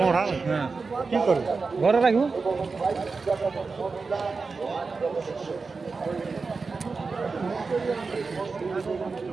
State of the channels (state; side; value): quieter; left; 4.4 dB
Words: কি করবো ঘরে রাখবো।